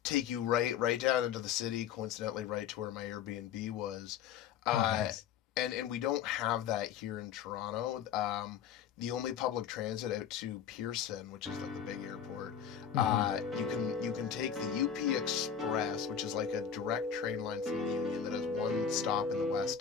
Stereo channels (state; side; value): quieter; right; 8.0 dB